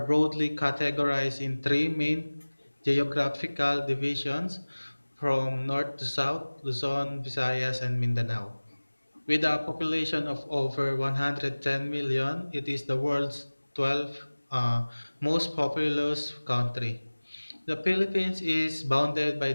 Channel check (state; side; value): inverted; both; correlation -1.00